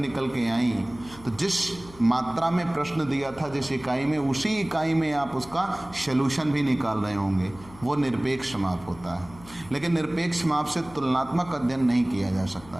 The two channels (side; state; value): left; noise; hum, 20 dB below the sound